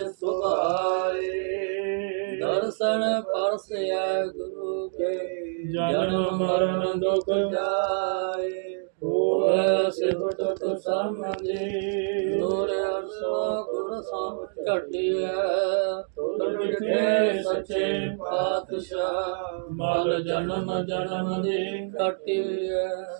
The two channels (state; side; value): silent; left; digital silence